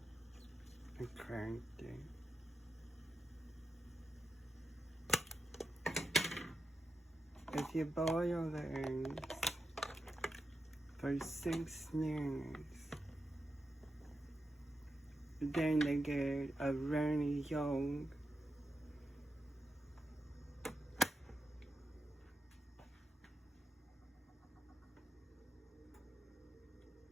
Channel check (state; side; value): normal; both; correlation 0.88